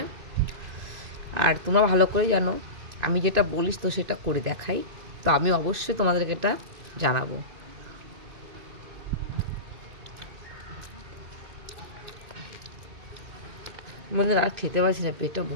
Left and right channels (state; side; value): late; left; 2.5 ms